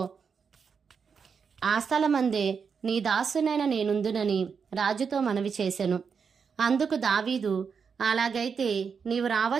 ఆ స్థలమందే నీ దాసునైన నేనుందునని రాజుతో మనవి చేసెను. అందుకు దావీదు, అలాగైతే నీవు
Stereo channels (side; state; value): left; quieter; 6.1 dB